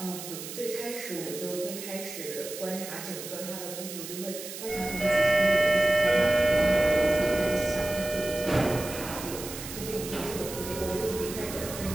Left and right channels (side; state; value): right; noise; hiss, 10 dB below the sound